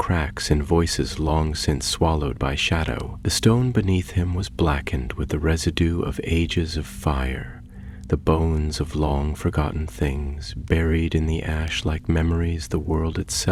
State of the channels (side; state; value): both; identical; correlation 1.00